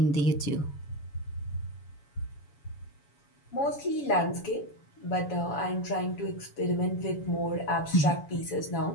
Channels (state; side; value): late; right; 7.0 ms